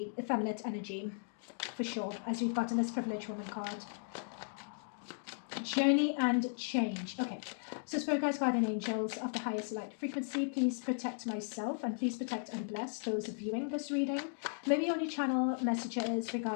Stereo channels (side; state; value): right; silent; digital silence